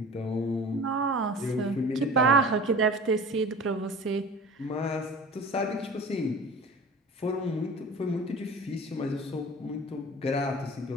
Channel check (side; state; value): both; normal; correlation 0.39